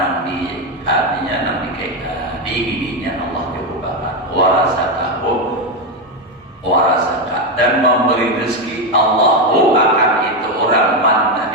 artinya nanti kayak diinginnya Allah cukupkan. Warasaka dan memberi rezeki Allahu akan itu orang man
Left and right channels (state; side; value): normal; both; correlation 0.09